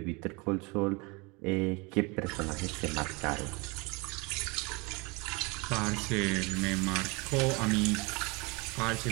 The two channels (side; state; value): left; quieter; 27.7 dB